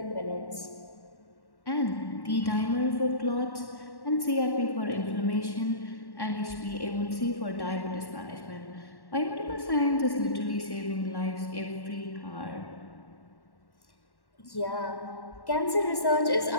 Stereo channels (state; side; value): late; right; 1.1 ms